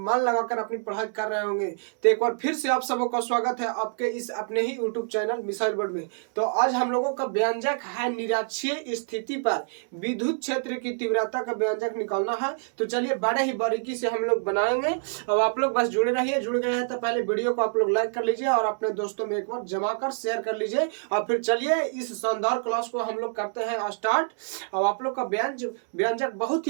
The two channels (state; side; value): silent; left; digital silence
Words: लगाकर अपनी पढ़ाई कर रहे होंगे। तो एक बार फिर से आप सबों का स्वागत है आपके इस अपने ही यूट्यूब चैनल मिसाइल वर्ड में। तो आज हम लोगों का व्यंजक है निरक्षीय स्थिति पर विद्युत क्षेत्र की तीव्रता का व्यंजक निकालना है। तो चलिए बड़े ही बारीकी से हम लोग बनाएंगे। अब आप लोग बस जुड़े रहिए। जुड़ गए हैं तो पहले वीडियो को आप लोग लाइक कर लीजिए और अपने दोस्तों में एक बार जमा कर शेयर कर लीजिए। और फिर चलिए इस शानदार क्लास को हम लोग करते हैं स्टार्ट। अब आप लोग का व्यंजक बहुत ही